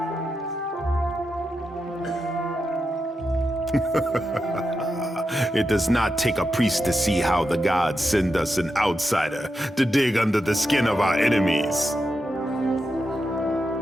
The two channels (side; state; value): both; normal; correlation 0.88